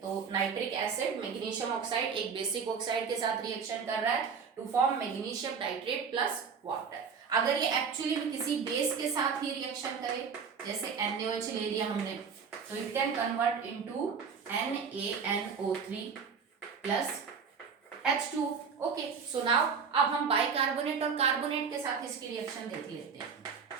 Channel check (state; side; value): quieter; left; 6.1 dB